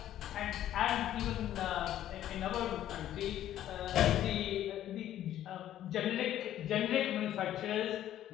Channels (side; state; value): right; quieter; 12.1 dB